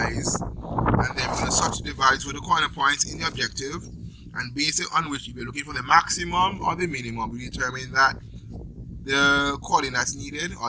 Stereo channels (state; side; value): identical; both; correlation 1.00